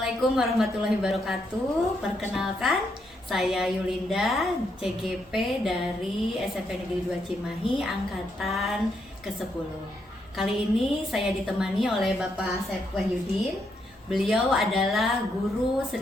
warahmatullahi wabarakatuh. Perkenalkan, saya Yulinda, CGP dari SMP Negeri 2 Cimahi, angkatan ke-10. Kali ini saya ditemani oleh Bapak Asep Wahyudin. Beliau adalah guru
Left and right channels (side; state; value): both; normal; correlation 0.78